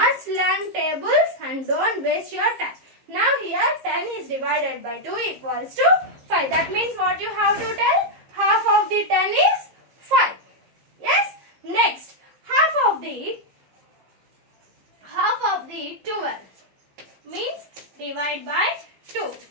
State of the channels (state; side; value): late; left; 15 ms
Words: learn tables and don't waste your time. Now here 10 is divided by 2 equals to 5. That means what you have to tell? Half of the 10 is 5. Yes? Next, half of the 12 means divide by 2.